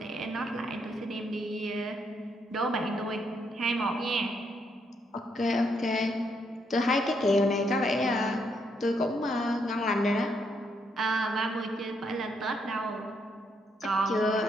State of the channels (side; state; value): both; normal; correlation 0.75